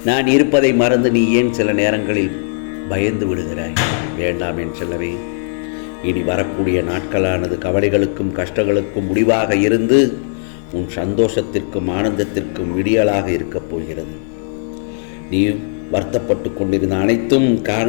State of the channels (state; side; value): silent; right; digital silence